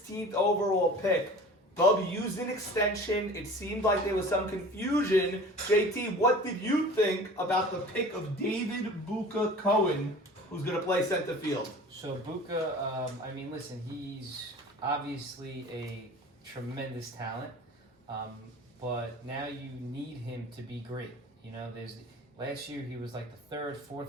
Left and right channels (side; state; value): both; normal; correlation 0.41